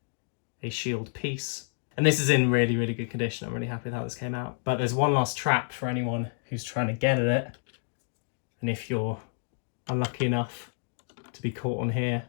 a shield piece. And this is in really, really good condition. I'm really happy with how this came out. But there's one last trap for anyone who's trying to get at it. And if you're unlucky enough to be caught on here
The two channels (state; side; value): silent; right; 58 dB below the other